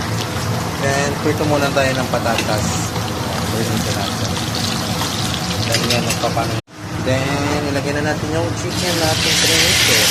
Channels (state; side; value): identical; both; correlation 1.00